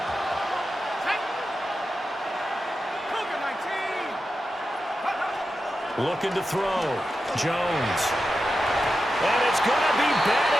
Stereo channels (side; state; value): both; normal; correlation 0.90